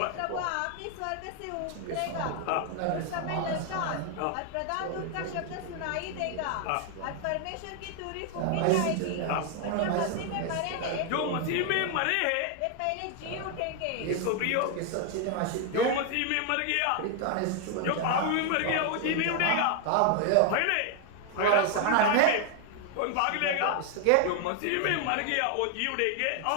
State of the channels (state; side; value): different; both; correlation 0.00